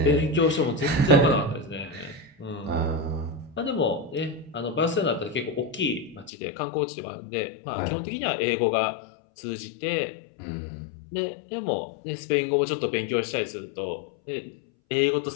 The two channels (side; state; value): right; drops out; at 6.3 s